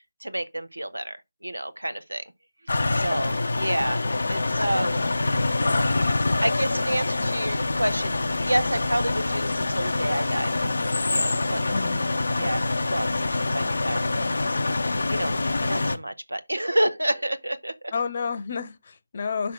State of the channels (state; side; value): inverted; both; correlation -0.96